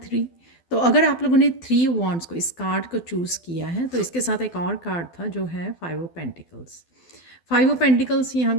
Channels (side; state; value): right; late; 12 ms